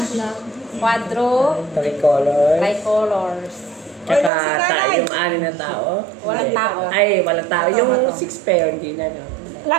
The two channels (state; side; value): drops out; left; at 4.3 s